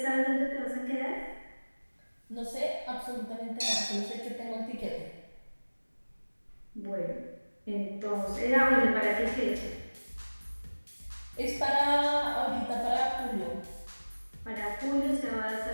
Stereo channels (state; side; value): inverted; both; correlation -1.00